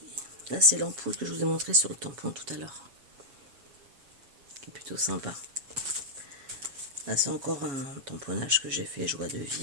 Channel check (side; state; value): left; late; 7.2 ms